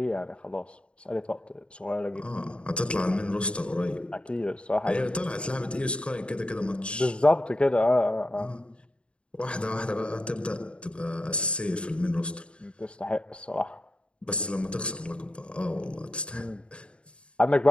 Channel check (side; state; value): right; late; 0.057 ms